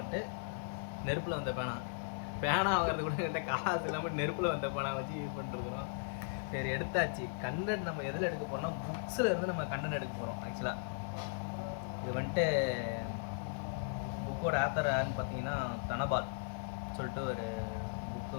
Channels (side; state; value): right; silent; digital silence